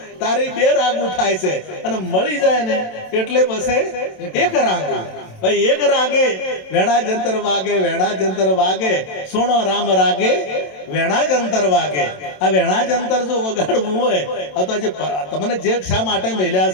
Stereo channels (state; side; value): late; right; 27 ms